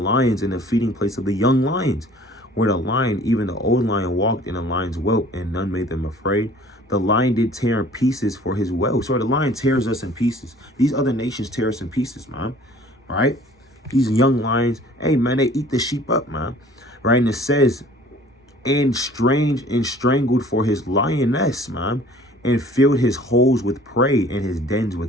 and the feeding place of the young lions? Where the lion, even the old lion, walked in a lion's whelp, and none made them afraid. The lion did tear in pieces for his whelp. So the lion tears us in pieces. These other nations tear us in pieces, man. All right? These young lions, hey, man, they eat the sheep up, man. Right? And it says, and strangled for his lioness, man, and filled his holes with prey and his dens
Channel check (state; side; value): normal; both; correlation 0.51